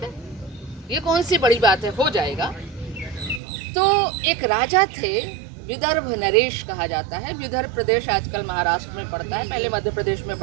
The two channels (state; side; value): drops out; left; at 3.4 s